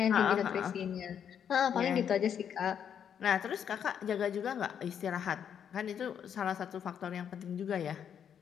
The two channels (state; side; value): quieter; right; 8.4 dB